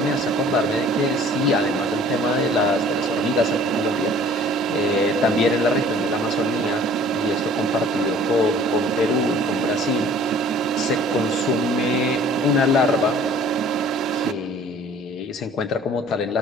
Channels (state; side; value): normal; both; correlation 0.51